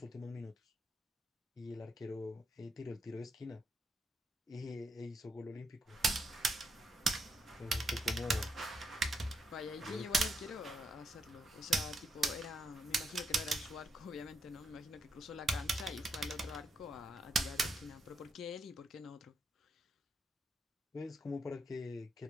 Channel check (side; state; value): both; normal; correlation 0.79